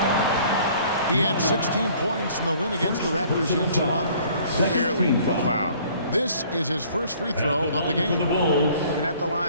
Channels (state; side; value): inverted; both; correlation -0.55